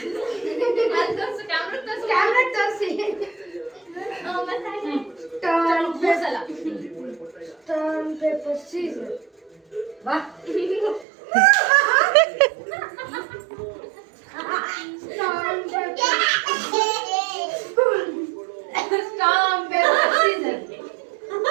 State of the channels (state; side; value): drops out; left; at 11.1 s